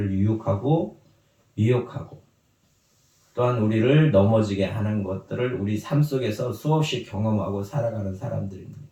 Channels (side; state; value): both; identical; correlation 1.00